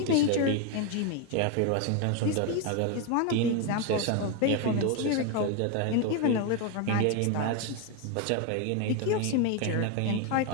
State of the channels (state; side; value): different; both; correlation 0.02